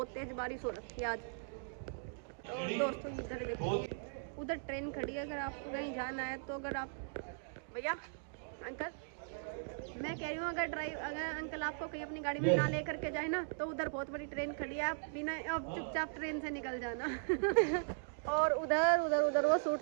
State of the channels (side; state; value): left; silent; digital silence